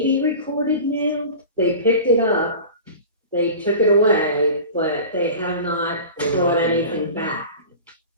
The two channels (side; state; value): both; inverted; correlation -0.36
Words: be recorded now. They picked it up. They took it away, but they have not brought anything back.